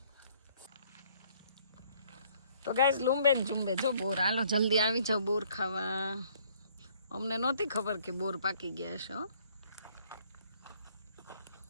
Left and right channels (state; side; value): inverted; both; correlation -0.62